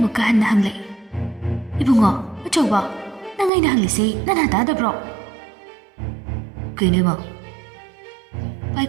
ꯍꯟꯅ ꯍꯪꯂꯛꯏ ꯏꯕꯨꯡꯉꯣ ꯑꯆꯧꯕ ꯅꯪ ꯑꯩꯅ ꯍꯪꯂꯤꯁꯤ ꯅꯅꯥ ꯇꯥꯗꯕ꯭ꯔꯣ ꯀꯩꯅꯣ ꯏꯃꯥ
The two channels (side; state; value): left; drops out; at 3.5 s